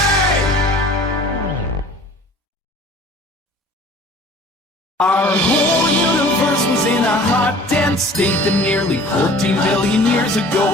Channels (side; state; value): both; normal; correlation 0.47